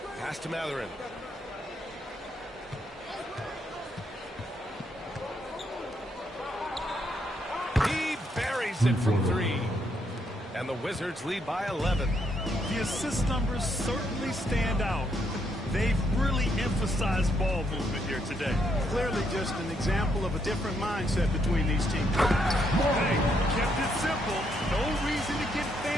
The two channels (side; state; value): both; normal; correlation 0.75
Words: Pass to Matherin. He buries it from 3. And the Wizards lead by 11. The assist numbers certainly stand out. They've really emphasized ball movement here today. Clearly just an example of a different mindset between these teams. Hey, kept it simple. No reason to get